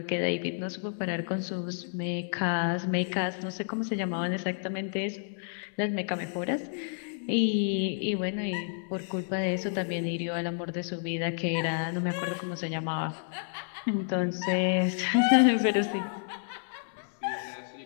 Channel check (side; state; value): right; silent; 58 dB below the other